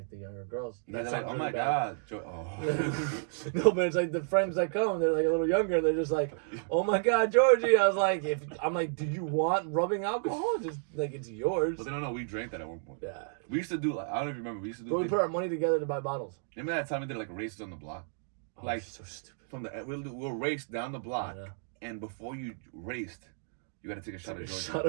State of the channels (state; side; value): silent; left; digital silence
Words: the younger girls. Yeah, That they're like, sounds oh my really bad. God. Oh. No, but it's like the friends that come, they're like a little younger, and they're just like, oh my God, Georgie. I was like, do you want rubbing alcohol? Just like, it's yours. But they don't know we drank that at one point. Yeah. We used to do, like, I don't know if you remember, we used to do. But we put our money together to buy bottles. Remember that time we did like races on the block? Oh, Like, so stupid. we'll race down the block, I know. and before you raced, you got to take a shot of Georgia. Shot